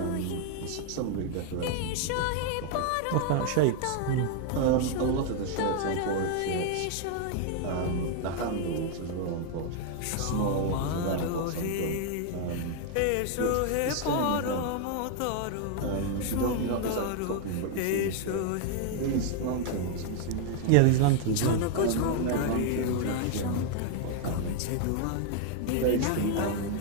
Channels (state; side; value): different; both; correlation 0.00